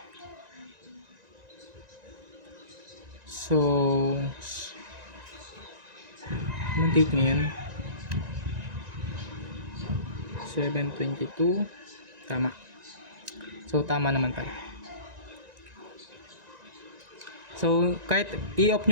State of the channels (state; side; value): late; left; 1.9 ms